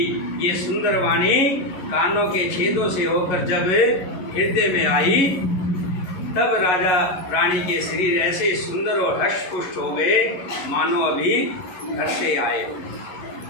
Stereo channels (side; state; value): right; late; 11 ms